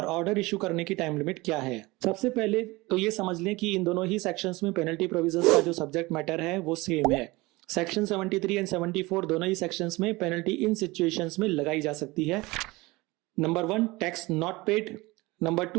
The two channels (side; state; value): left; quieter; 22.2 dB